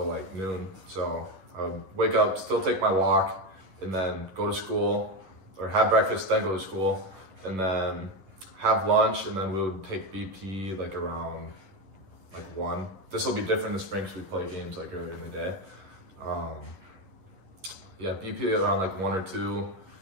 like noon. So I would wake up, still take my walk, and then go to school, or have breakfast, then go to school, and then have lunch, and then we would take BP like around like 1. This will be different in the spring because we play games like earlier in the day. Yeah, BP around like 1 or 2.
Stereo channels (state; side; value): late; left; 11 ms